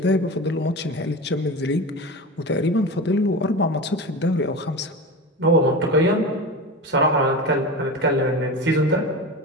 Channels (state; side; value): normal; both; correlation 0.27